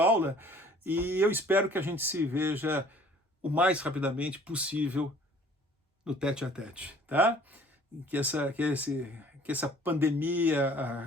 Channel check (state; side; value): normal; both; correlation 0.53